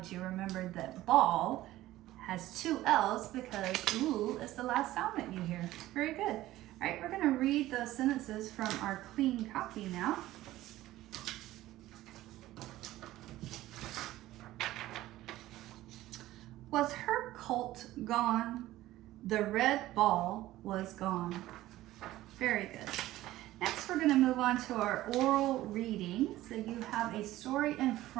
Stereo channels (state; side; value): quieter; left; 15.7 dB